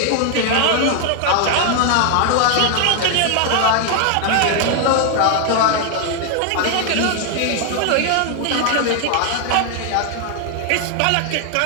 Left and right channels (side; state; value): both; different; correlation 0.00